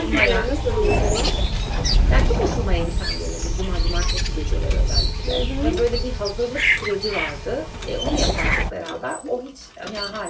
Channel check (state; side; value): identical; both; correlation 1.00